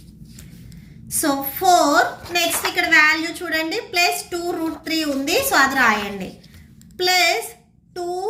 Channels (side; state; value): both; identical; correlation 1.00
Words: సో 4. నెక్స్ట్ ఇక్కడ వాల్యూ చూడండి, ప్లస్ 2 రూట్ 3 ఉంది, సో అది రాయండి. Plus 2